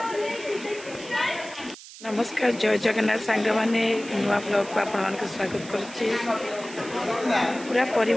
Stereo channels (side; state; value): right; noise; hiss, 16 dB below the sound